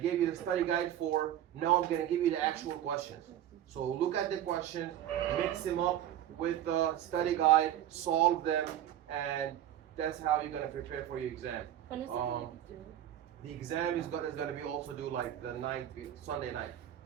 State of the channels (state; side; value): quieter; left; 11.5 dB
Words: gave you the study guide for. Now I'm gonna give you the actual questions. So look at the questions, mix them up with the study guide, solve them, and that's how you're gonna prepare for your exam. When is it going to do? The exam is gonna be also due like the night, Sunday night.